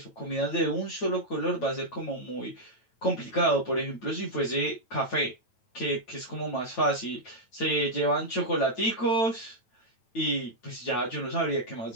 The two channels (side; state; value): right; late; 9.0 ms